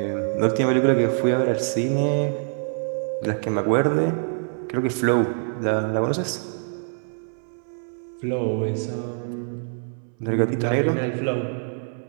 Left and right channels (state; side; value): silent; left; 62 dB below the other